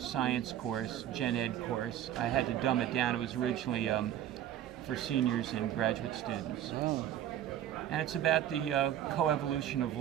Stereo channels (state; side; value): quieter; left; 11.4 dB